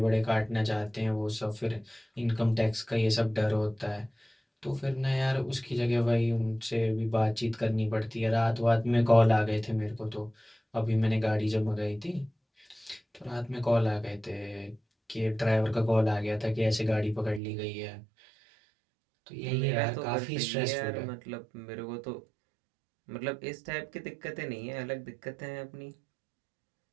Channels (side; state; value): left; drops out; at 17.4 s